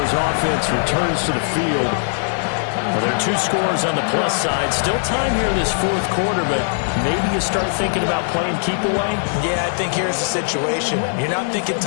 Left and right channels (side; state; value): right; silent; digital silence